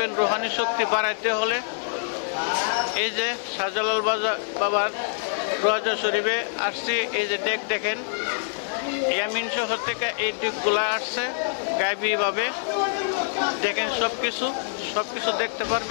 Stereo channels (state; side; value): silent; right; 57 dB below the other